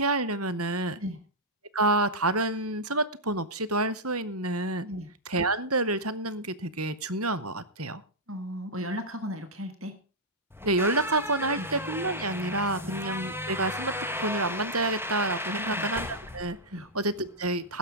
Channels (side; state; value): both; normal; correlation -0.08